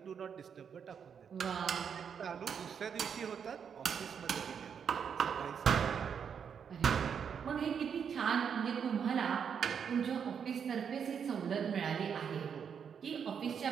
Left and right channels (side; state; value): left; quieter; 7.3 dB